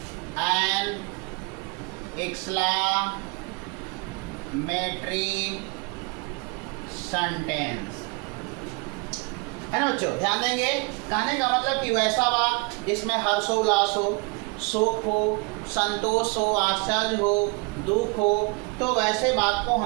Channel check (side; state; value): left; quieter; 29.7 dB